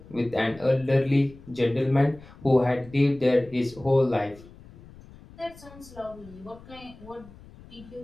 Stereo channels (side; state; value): left; noise; rumble, 21 dB below the sound